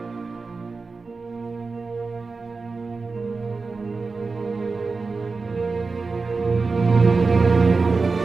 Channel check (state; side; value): quieter; left; 4.2 dB